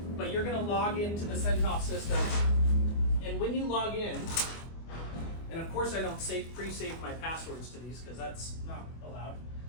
but you're going to log into the Centos system, and when you log in, and of course I don't pre-save my passwords to these because that's not allowed,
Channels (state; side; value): late; right; 24 ms